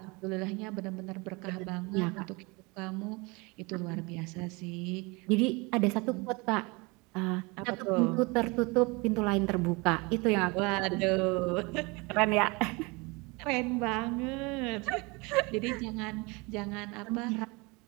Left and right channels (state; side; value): quieter; left; 26.9 dB